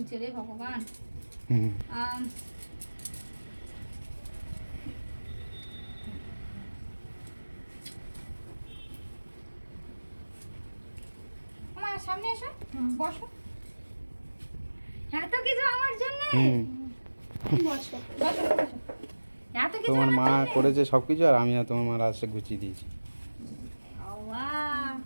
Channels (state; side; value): inverted; both; correlation -1.00